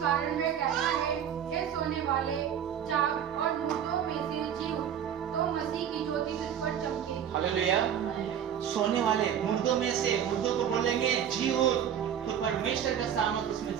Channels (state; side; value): quieter; left; 9.1 dB